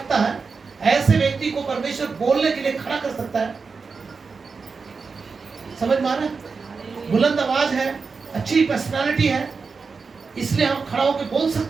है, ऐसे व्यक्ति को परमेश्वर बोलने के लिए खड़ा कर सकता है। समझ में आ रहा है? बुलंद आवाज है, अच्छी पर्सनालिटी है, इसलिए हम खड़ा होकर बोल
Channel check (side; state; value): left; quieter; 4.8 dB